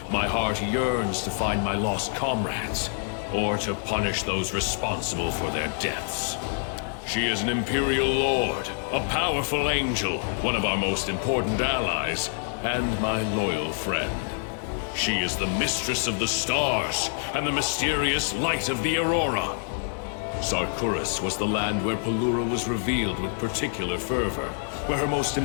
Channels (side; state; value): right; silent; 61 dB below the other